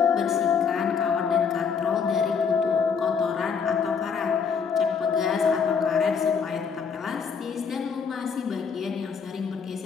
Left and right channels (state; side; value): quieter; right; 6.1 dB